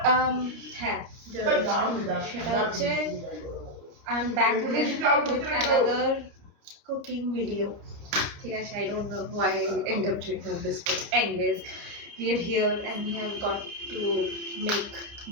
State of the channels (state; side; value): late; left; 29 ms